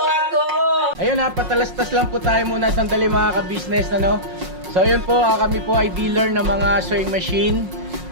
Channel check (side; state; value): left; late; 5.5 ms